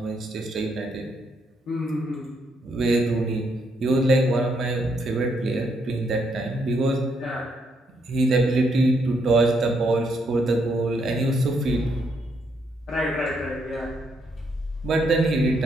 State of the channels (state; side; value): normal; both; correlation 0.75